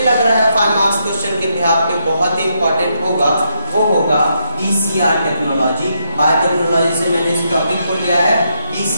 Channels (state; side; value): inverted; both; correlation -0.78